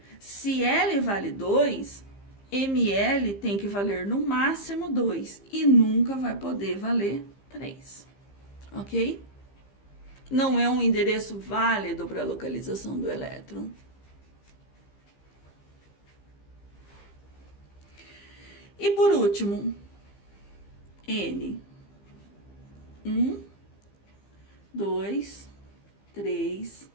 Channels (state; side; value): late; right; 15 ms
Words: se L vale 2, ML tem que valer no máximo 2 e nunca vai poder valer 3. Ok? Não é um endereço válido para a localização do elétron. E por último, N. 1, 2, 3,